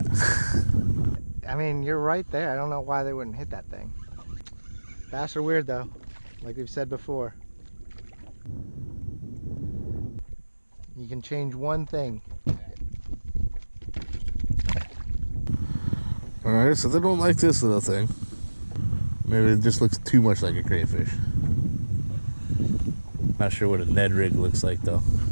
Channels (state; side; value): inverted; both; correlation -1.00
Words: I mean, you're right there. I don't know why they wouldn't hit that thing. Bass are weird though, like we've said before. You can change one thing. Alright, so they don't like this little thing. Maybe it just looks too much like a crayfish. Not sure what a Ned Rig looks like though.